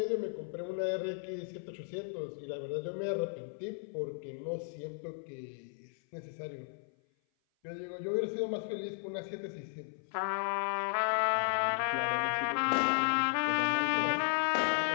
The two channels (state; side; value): silent; right; 55 dB below the other